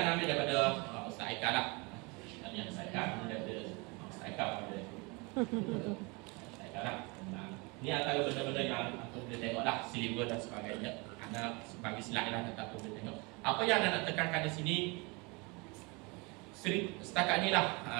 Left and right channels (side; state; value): left; quieter; 28.2 dB